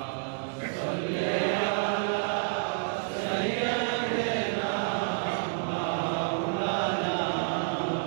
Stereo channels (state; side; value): silent; left; digital silence